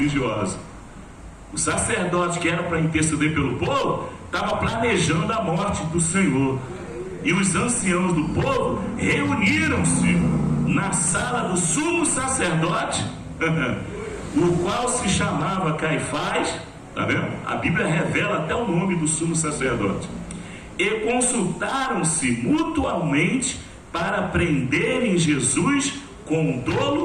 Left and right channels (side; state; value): both; identical; correlation 1.00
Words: O sacerdote, que era para interceder pelo povo, estava planejando a morte do Senhor. E os anciãos do povo reuniram-se na sala do sumo sacerdote, o qual se chamava Caifás. Tá vendo? A Bíblia revela até o nome do sumo sacerdote. E consultaram-se mutuamente para prenderem Jesus com